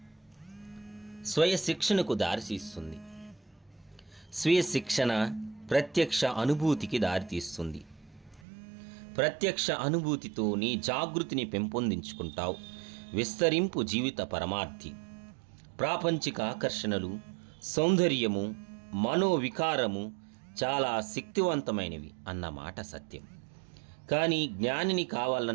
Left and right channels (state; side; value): drops out; left; at 8.5 s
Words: స్వయ శిక్షణకు దారితీస్తుంది. స్వీయ శిక్షణ ప్రత్యక్ష అనుభూతికి దారితీస్తుంది. ప్రత్యక్ష అనుభూతితో నీ జాగృతిని పెంపొందించుకుంటావు. విస్తరింపు జీవిత పరమార్థి. ప్రాపంచిక ఆకర్షణలు, సౌందర్యము, మనోవికారము చాలా శక్తివంతమైనవి అన్నమాట సత్యం. కానీ జ్ఞానిని